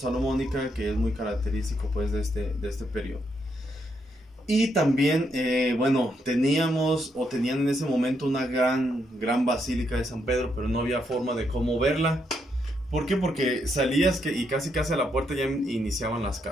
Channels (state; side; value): normal; both; correlation 0.78